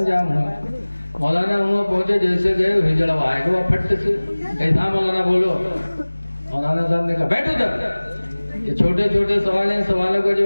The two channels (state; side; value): inverted; both; correlation -1.00